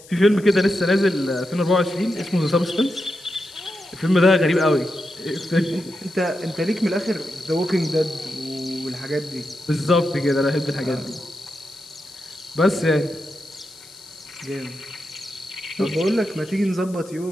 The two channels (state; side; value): noise; left; hiss, 21 dB below the sound